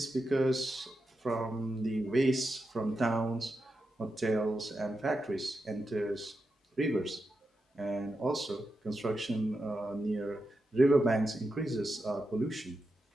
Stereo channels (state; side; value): normal; both; correlation 0.88